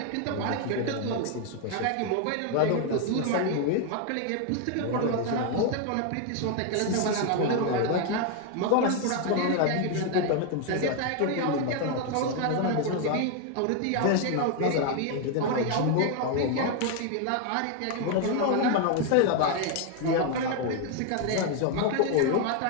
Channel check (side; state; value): both; different; correlation 0.01